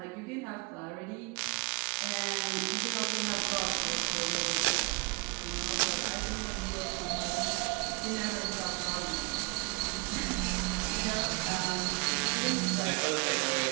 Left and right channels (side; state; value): left; quieter; 27.5 dB